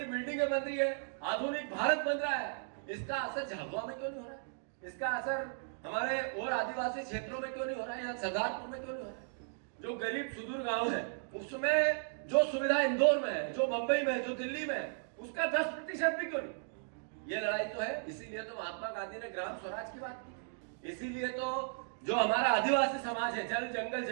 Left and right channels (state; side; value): silent; left; digital silence